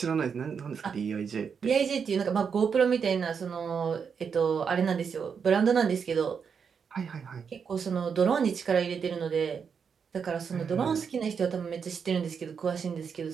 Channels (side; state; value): left; quieter; 6.5 dB